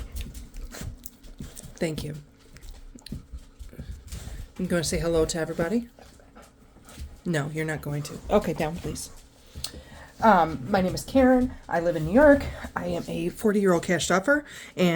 Thank you. I'm going to say hello to everybody. No, you're not going to. Okay, down please. My name is Karen. I live in New York. I am a 40-year-old cash stuffer,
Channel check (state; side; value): identical; both; correlation 1.00